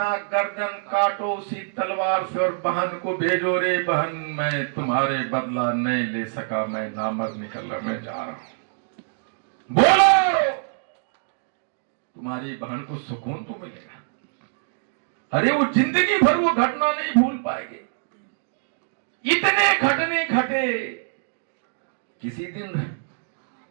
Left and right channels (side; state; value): left; silent; digital silence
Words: गर्दन काटो उसी तलवार से और बहन को भेजो, रे बहन मैं तुम्हारे बदला नहीं ले सका, मैं नामर्द निकलने जा रहा हूं। बोलो, तुम्हारी बहन को सुकून तो मिलेगा। अरे वो जिंदगी भर वो घटना नहीं भूल पाएगी। इतने घटने घटे, किसी दिन